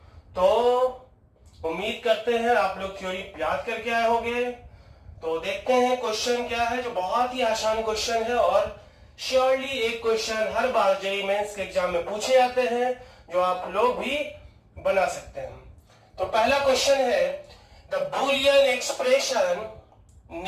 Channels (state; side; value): identical; both; correlation 1.00